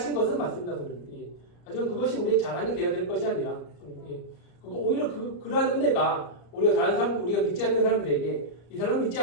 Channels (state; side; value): late; right; 34 ms